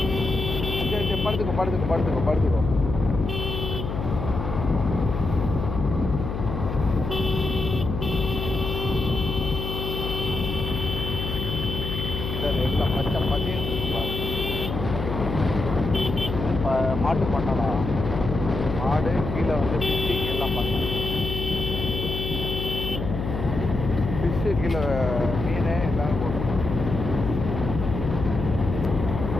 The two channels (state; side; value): noise; left; hum, 5 dB below the sound